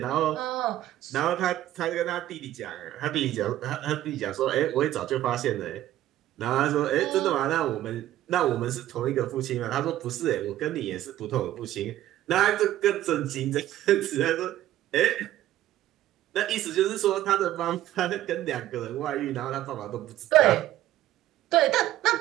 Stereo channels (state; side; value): quieter; left; 13.7 dB